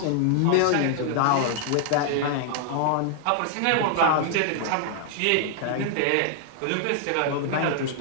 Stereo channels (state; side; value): different; both; correlation 0.00